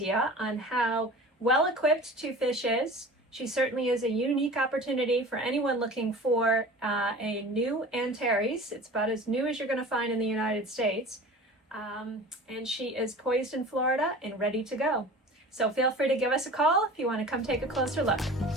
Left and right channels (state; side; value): normal; both; correlation 0.39